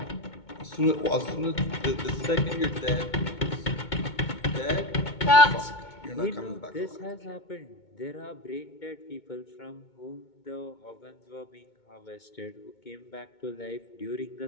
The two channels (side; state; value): right; late; 2.2 ms